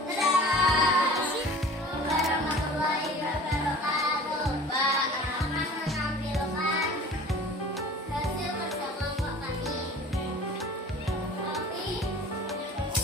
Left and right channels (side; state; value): both; normal; correlation 0.43